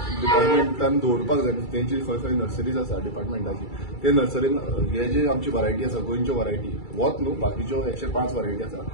डिपार्टमेंटान दवरपाक जाय तेंची खंय खंय नर्सरीज आसा डिपार्टमेंटाची ते नर्सरीन हे जे आमची वरायटी आसा गोंयच्यो वरायटी वोत न्हू बाकीच्यो 105 वरायटी आसा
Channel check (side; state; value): right; late; 2.3 ms